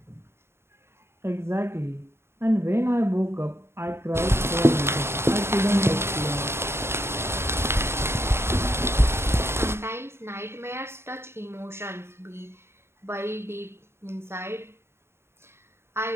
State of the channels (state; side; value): late; left; 0.12 ms